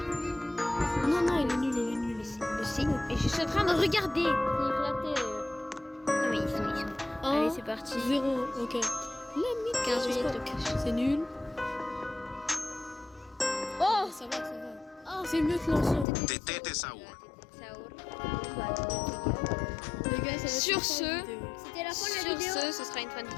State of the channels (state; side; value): drops out; right; at 16.1 s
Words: Non, il est nul. Et je suis en train de regarder. C'est éclaté. Non mais ils sont. Allez, c'est parti. 0, ok. 15 minutes de cash. C'est nul. Oh, Ça va. Oh, c'est mieux que l'ancien. Tetete Saur. Saour. Les gars, ça va Sur être ce- la vidéo. c'était la fin de la Sur vidéo. ce sera une fin de